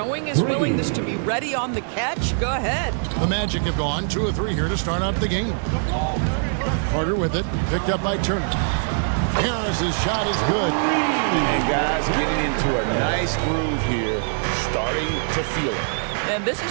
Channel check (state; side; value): silent; left; digital silence